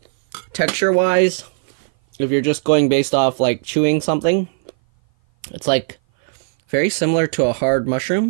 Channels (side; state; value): left; silent; 58 dB below the other